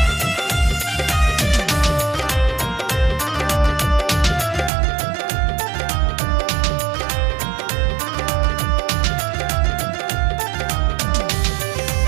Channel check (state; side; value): drops out; left; at 4.7 s